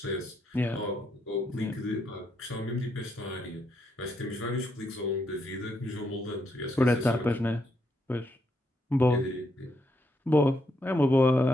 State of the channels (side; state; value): both; normal; correlation 0.77